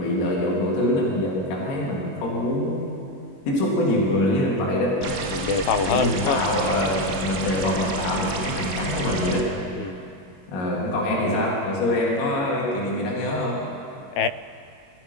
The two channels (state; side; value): late; right; 21 ms